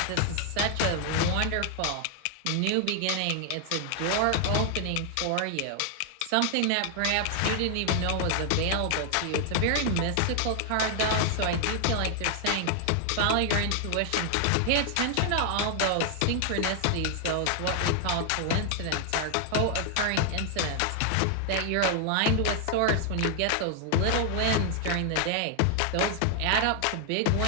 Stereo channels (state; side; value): different; both; correlation 0.00